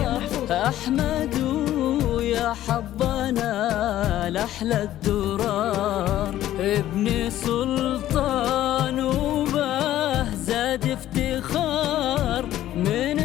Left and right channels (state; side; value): quieter; right; 13.2 dB